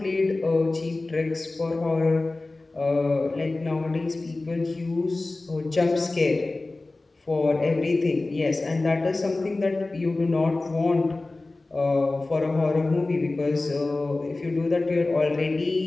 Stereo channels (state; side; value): quieter; right; 3.1 dB